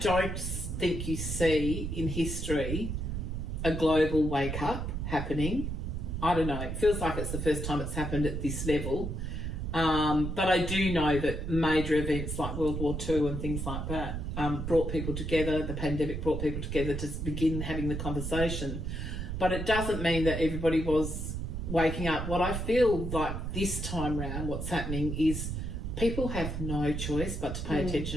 think you see in history a global wake up happening. I don't know. It feels like it's the first time it's happened at this level. But I do know that major events like World War II and things like that brought people together. The pandemic brought people together to begin having the conversation. But it doesn't mean that everybody was waking up. What I feel like this time round, what's happening is people have no choice but to pay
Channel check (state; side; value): noise; right; rumble, 3 dB below the sound